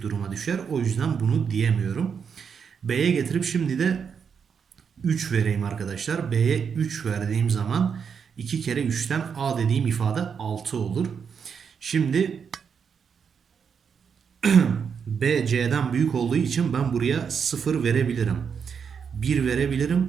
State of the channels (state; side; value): quieter; left; 6.7 dB